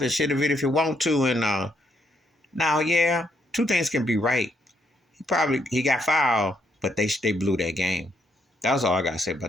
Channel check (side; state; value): both; normal; correlation 0.74